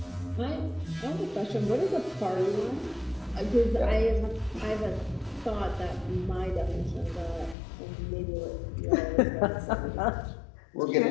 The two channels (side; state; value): right; drops out; at 7.6 s